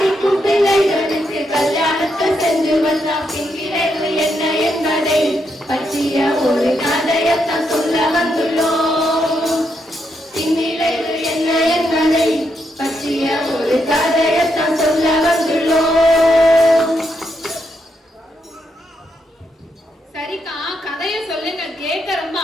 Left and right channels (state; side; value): normal; both; correlation 0.80